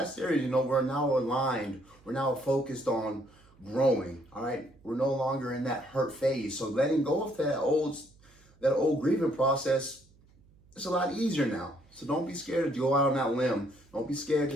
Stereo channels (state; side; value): noise; right; hum, 29 dB below the sound